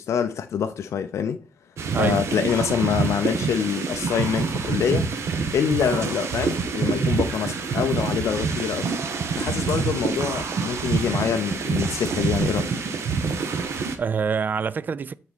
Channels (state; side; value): normal; both; correlation 0.60